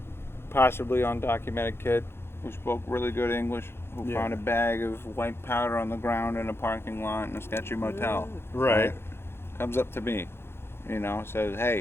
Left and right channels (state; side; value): late; right; 0.12 ms